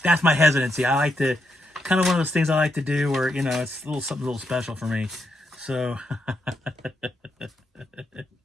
that's my hesitancy. I like to, kind of one of those things I like to do where, it's something a little special for me. So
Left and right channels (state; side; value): normal; both; correlation 0.82